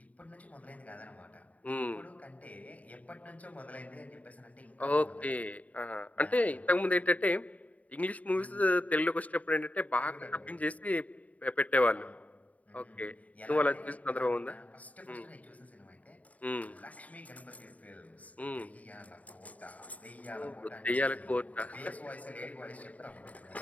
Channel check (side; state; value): right; late; 0.070 ms